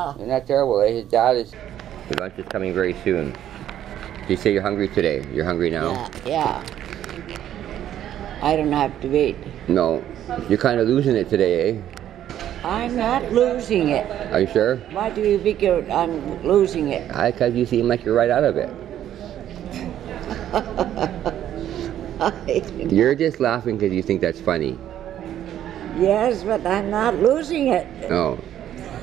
that terrible? His dad is... Your lunch is coming very soon. You say you're hungry today. You're hungry now? Yeah. I don't have to wait. No. You're kind of losing it today, eh? I'm not losing it. Are you sure? Why do you figure I'm losing it? Because you seem like you're right out of it. You're just laughing because you think that's funny. Yes, but I'm not losing it. Oh.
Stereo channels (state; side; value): quieter; left; 11.3 dB